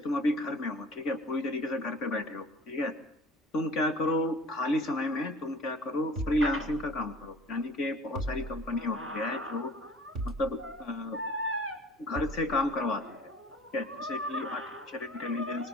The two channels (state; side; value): normal; both; correlation 0.47